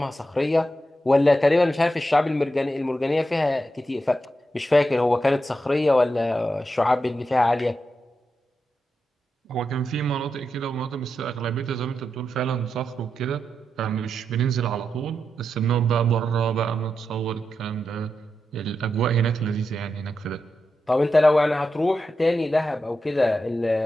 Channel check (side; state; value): both; normal; correlation 0.87